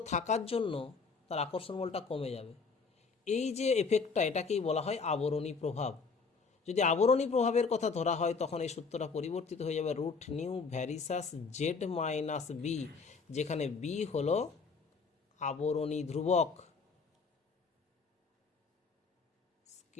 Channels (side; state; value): right; quieter; 4.8 dB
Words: থাকার জন্য তার আকর্ষণ বলটা কমে যাবে। এই যে এফেক্টটা, এটাকেই বলা হয় আবরণী প্রভাব। যদি আবরণী প্রভাবের কথা ধরা হয়, তখন এই সূত্রটা পরিবর্তিত হয়ে যাবে root nu varies as Z minus B, যেখানে বি হলো আবরণী ধ্রুবক,